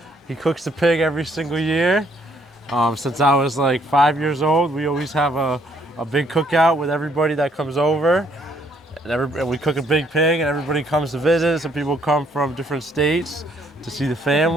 cooks the pig every single year. Since I was like 5 years old, we always have a big cookout with everybody that comes over. And we cook a big pig, and everybody comes to visit. Some people come from different states to see the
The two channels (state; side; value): normal; both; correlation 0.67